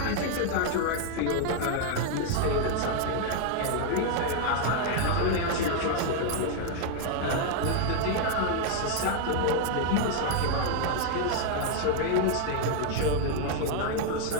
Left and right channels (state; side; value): different; both; correlation 0.00